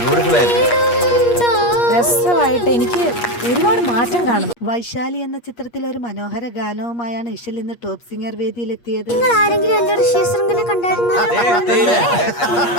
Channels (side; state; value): right; late; 8.4 ms